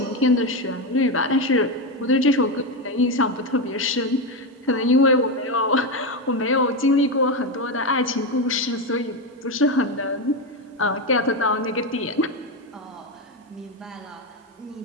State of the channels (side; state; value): both; normal; correlation 0.11